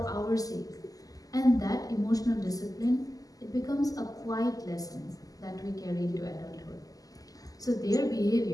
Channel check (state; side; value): late; right; 0.17 ms